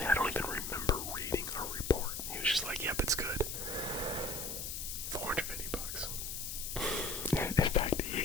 I don't even remember reading a report. He was just like, yep, it's good. $450. In fact,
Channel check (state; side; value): noise; left; hiss, 5 dB below the sound